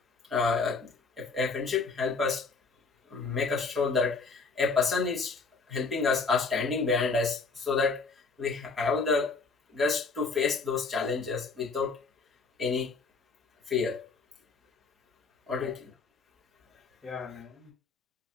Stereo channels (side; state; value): right; quieter; 4.4 dB